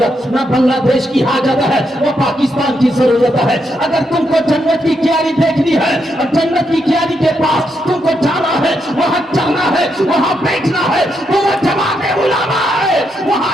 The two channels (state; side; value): normal; both; correlation 0.80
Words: نہ بنگلہ دیش کی حاجت ہے نہ پاکستان کی ضرورت ہے اگر تم کو جنت کی کیاری دیکھنی ہے اور جنت کی کیاری کے پاس تم کو جانا ہے وہاں چلنا ہے وہاں بیٹھنا ہے وہ جماعت علماء ہے